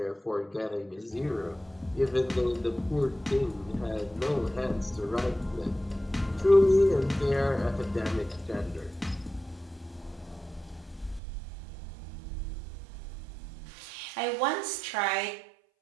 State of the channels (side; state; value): left; drops out; at 11.2 s